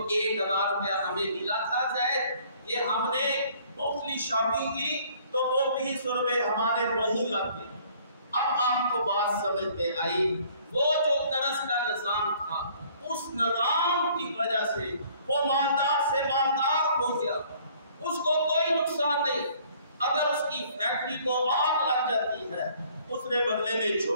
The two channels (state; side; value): inverted; both; correlation -0.58